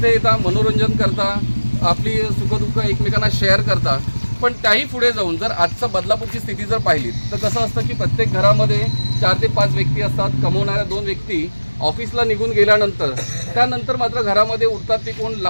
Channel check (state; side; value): inverted; both; correlation -1.00